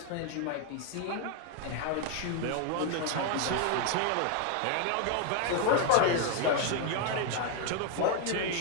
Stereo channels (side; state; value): both; different; correlation 0.01